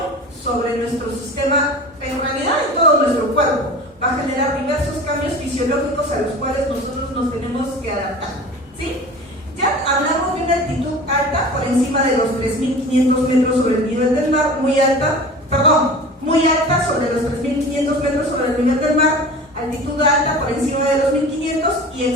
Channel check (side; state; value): both; normal; correlation 0.37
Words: sobre nuestro sistema, en realidad en todo nuestro cuerpo. Va a generar diversos cambios fisiológicos a los cuales nosotros nos tenemos que adaptar, ¿sí? Ya hablamos de una altitud alta por encima de los 3500 metros sobre el nivel del mar, muy alta sobre los 3500 metros sobre el nivel del mar, altitud alta por encima de los 1500 y